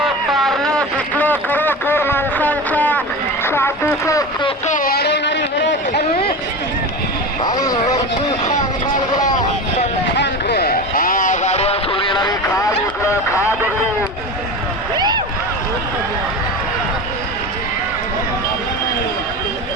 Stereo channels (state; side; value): normal; both; correlation 0.27